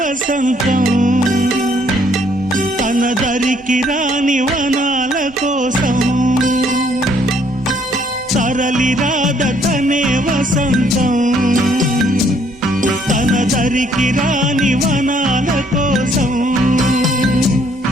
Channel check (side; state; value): both; normal; correlation 0.66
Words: తన దరికి రాని వనాల కోసం తరలి రాద తనే వసంతం తన దరికి రాని వనాల కోసం